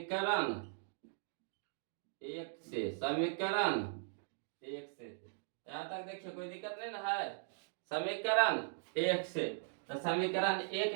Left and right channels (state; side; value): silent; left; digital silence